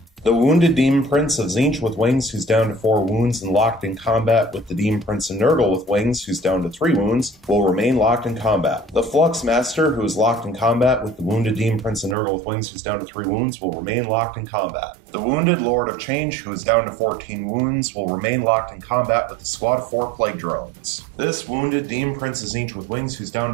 The Wounded Demon Prince of Tzeentch with Wings, who's down to 4 wounds and locked in combat with the Demon Prince of Nurgle with Wings, who's down to 3 wounds, will remain locked in combat. The Flux Master, who is locked in combat with the Wounded Demon Prince of Nurgle with Wings, who's down to 3 wounds, will remain locked in combat. The Wounded Lord of Change, who is down to 14 wounds, will remain locked in combat with the squad of 4 plague drones. This Wounded Demon Prince of Tzeentch with Wings, who's down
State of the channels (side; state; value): left; drops out; at 12.2 s